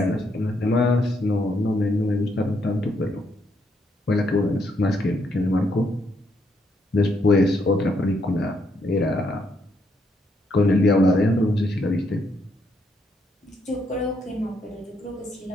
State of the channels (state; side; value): normal; both; correlation 0.75